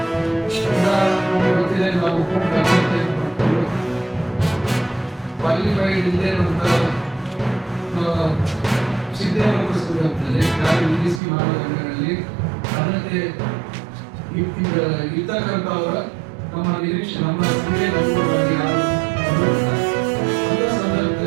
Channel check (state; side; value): drops out; left; at 11.2 s